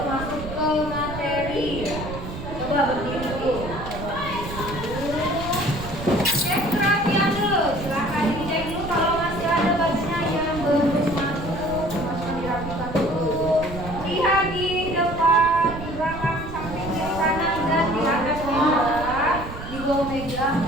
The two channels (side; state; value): right; noise; rumble, 9 dB below the sound